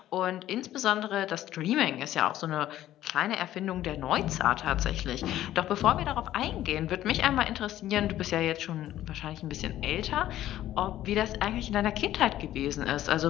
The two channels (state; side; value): quieter; right; 13.2 dB